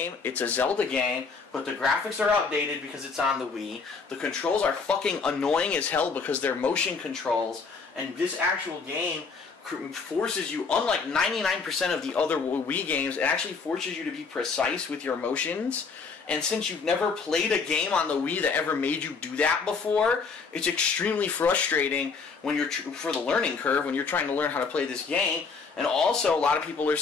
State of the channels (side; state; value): right; quieter; 4.9 dB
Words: it's a Zelda game, but the graphics are outdated because it's on the Wii. The controls are fucking annoying as hell because they're motion controls, and this actual game forces you, unlike 99% of the other Wii games, it actually forces you to be precise with your motions. And since you've never played a game on the Wii that ever made you do that before, it's extremely frustrating when you're for the learning curve when you're trying to learn how to play this game. And also, a lot of people are